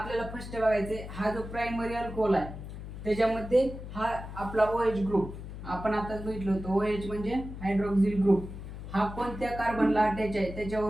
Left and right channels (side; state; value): left; noise; hum, 10 dB below the sound